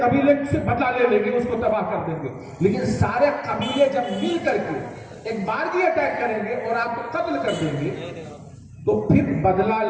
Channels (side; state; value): both; identical; correlation 1.00